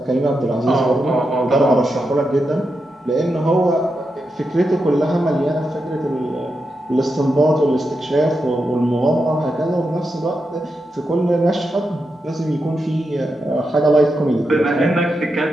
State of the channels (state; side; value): normal; both; correlation 0.86